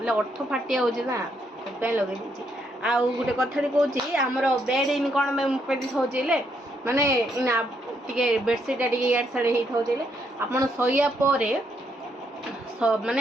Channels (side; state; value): both; normal; correlation 0.75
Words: अर्थ फाटी आउची ना पे लगे दीची। आ गुटे कथाडी कहूची हमरो बेड इन कोन में पेदी होचीले माने इना टिके बेडशीट टिके यार साडे हेई थाउचीले आपण सोइया परे